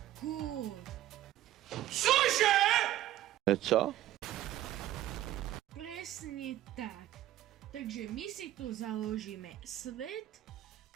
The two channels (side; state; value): left; quieter; 13.8 dB